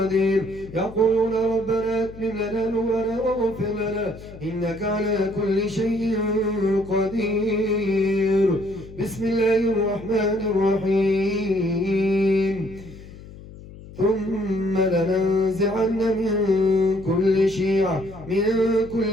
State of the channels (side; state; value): left; noise; hum, 17 dB below the sound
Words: يقولون ربنا اتم لنا نورنا واغفر لنا إنك على كل شيء قدير. بسم الله الرحمن الرحيم. ثم لننزعن من